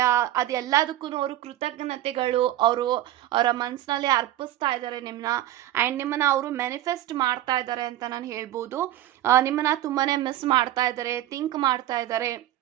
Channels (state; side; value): quieter; left; 13.7 dB